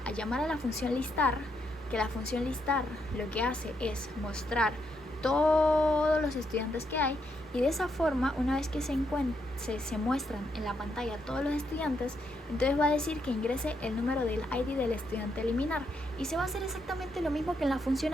a llamar a la función listar, que la función listar lo que hace es mostrar todos los estudiantes que hay, y de esa forma, una vez que se muestran en la pantalla todos los estudiantes, entonces va a decir que ingrese el número del ID del estudiante a eliminar, y se va a hacer exactamente lo mismo que en la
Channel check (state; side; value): normal; both; correlation 0.78